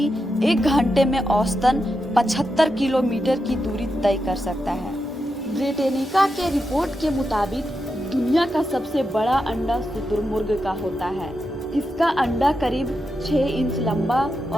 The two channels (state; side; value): normal; both; correlation 0.87